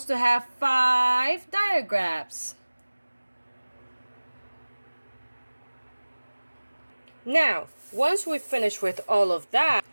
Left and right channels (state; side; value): inverted; both; correlation -1.00